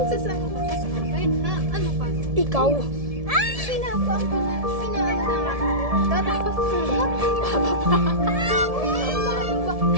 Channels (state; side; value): late; left; 1.7 ms